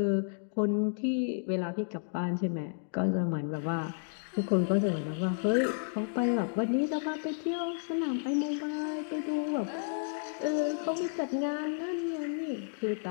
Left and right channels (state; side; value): silent; right; digital silence